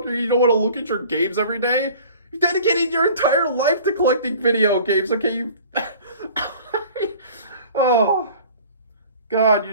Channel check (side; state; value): both; inverted; correlation -0.46